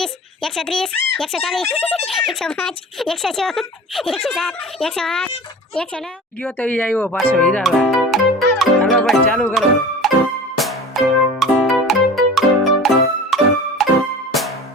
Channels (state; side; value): normal; both; correlation 0.38